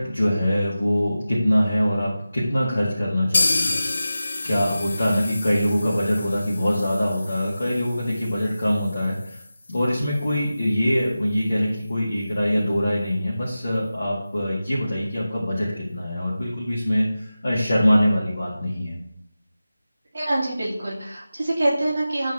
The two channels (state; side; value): inverted; both; correlation -0.94